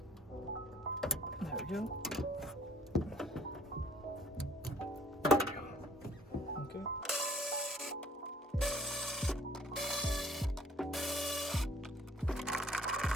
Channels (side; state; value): both; normal; correlation 0.57